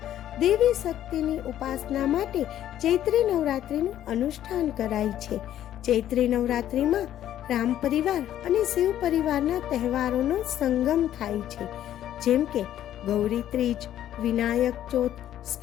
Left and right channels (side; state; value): right; quieter; 11.7 dB